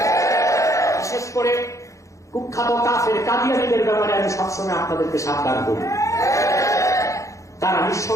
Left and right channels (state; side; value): late; right; 0.15 ms